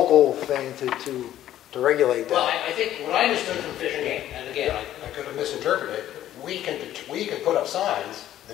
thing to regulate that. well, I think what I understood from Fish and Game, and again, I could have misinterpreted, we can put up signs, the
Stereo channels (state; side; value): quieter; right; 12.4 dB